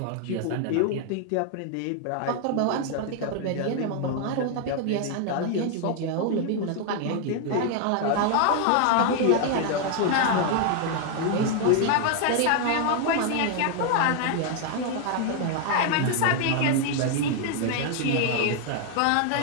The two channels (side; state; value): both; different; correlation 0.00